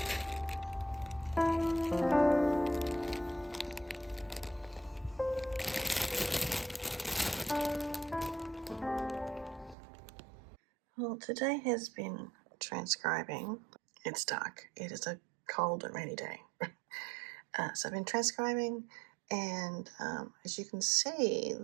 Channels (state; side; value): drops out; left; at 9.8 s